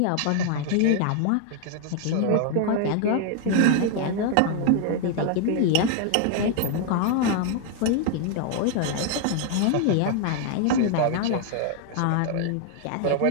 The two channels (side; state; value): both; different; correlation 0.00